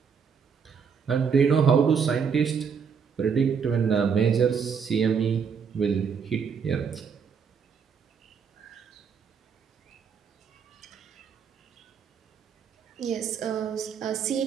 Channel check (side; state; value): left; quieter; 6.5 dB